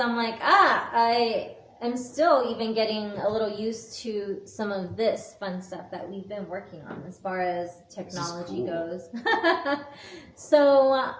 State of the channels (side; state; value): both; identical; correlation 1.00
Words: like, I am still even getting a little used to some of this fun stuff that we've been working on as far as technology goes. So,